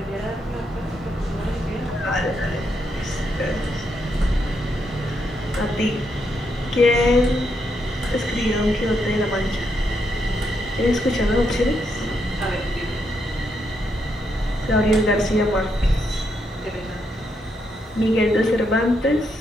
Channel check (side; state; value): both; normal; correlation 0.79